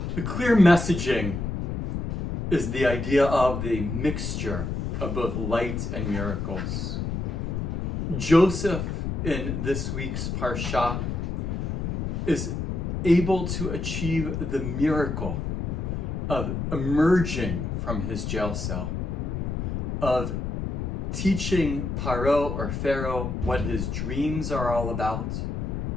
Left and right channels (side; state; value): left; noise; rumble, 2 dB below the sound